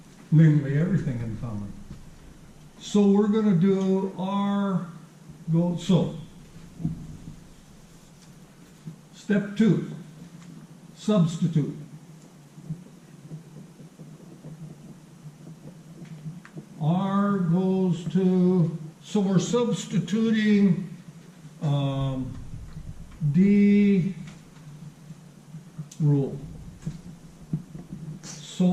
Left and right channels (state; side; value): identical; both; correlation 1.00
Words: Namely, everything in common. So we're going to do R go, so. Step 2, substitute. R goes to, so we're substituting D rule.